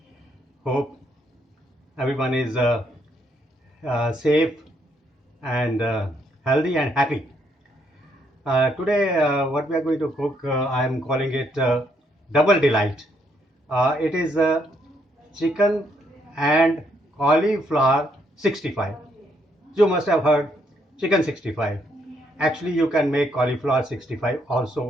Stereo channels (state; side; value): normal; both; correlation 0.73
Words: Hope everyone is safe and healthy and happy. Today, what we are going to cook, I am calling it Double Delight. It is chicken and cauliflower 65. You must have heard chicken 65. Actually, you can make cauliflower 65